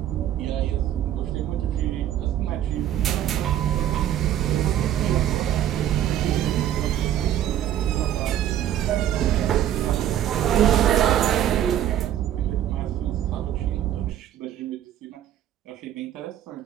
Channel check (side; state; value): left; quieter; 11.4 dB